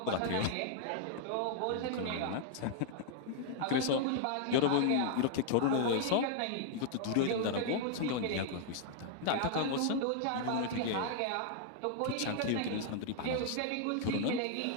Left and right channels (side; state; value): both; different; correlation -0.01